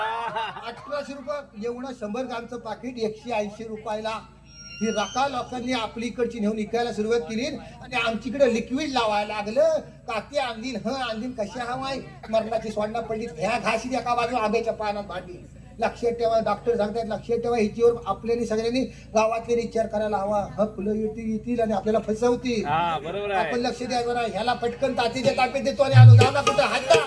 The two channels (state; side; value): identical; both; correlation 1.00